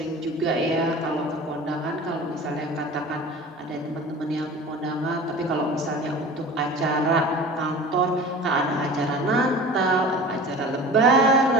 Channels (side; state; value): both; normal; correlation 0.38